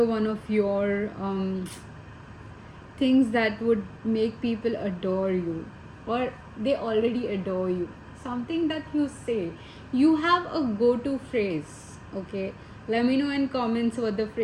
one of your things that would make people adore you, or they already adore you. Something that you say. You have a go-to phrase, okay? Let me know in comments what the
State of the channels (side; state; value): both; identical; correlation 1.00